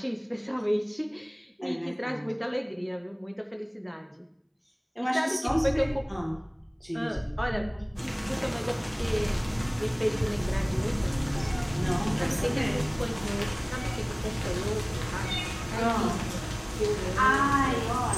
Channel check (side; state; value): both; identical; correlation 1.00